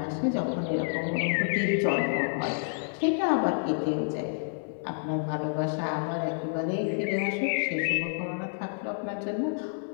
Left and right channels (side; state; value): right; silent; 59 dB below the other